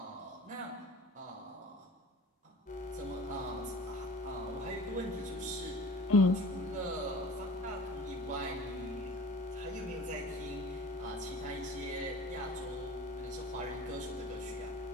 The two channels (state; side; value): normal; both; correlation 0.41